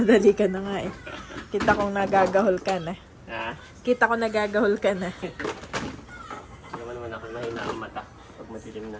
ka na nga eh. Kita kong nagagahol ka na. Ha? Kita ko nagagahol ka na. Hindi naman ako mahina ang mata pag madilim na.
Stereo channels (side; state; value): both; identical; correlation 1.00